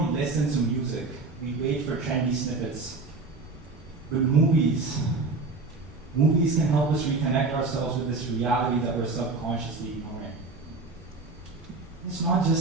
listen to music, we wait for trendy snippets. But movies can help us reconnect ourselves with this reality that we're subconsciously ignoring. It's not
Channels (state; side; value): quieter; left; 3.7 dB